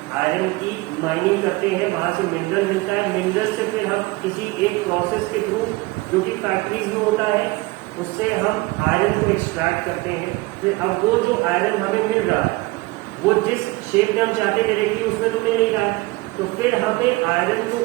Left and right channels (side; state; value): left; quieter; 22.2 dB